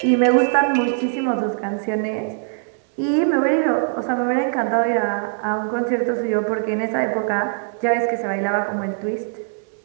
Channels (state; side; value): silent; left; 65 dB below the other